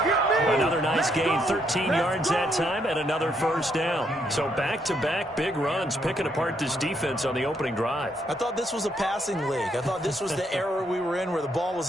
Another nice gain, 13 yards that time, and another first down. So back-to-back big runs, picking apart this defense on the opening drive. I thought this was a passing league. I thought this was the era we were in where the ball was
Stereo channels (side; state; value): both; normal; correlation 0.74